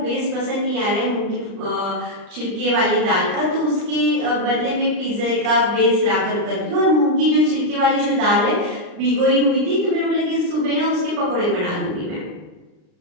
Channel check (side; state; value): left; late; 39 ms